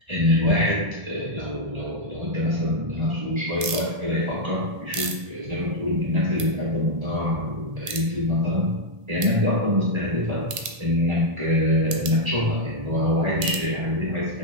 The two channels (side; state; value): left; late; 1.7 ms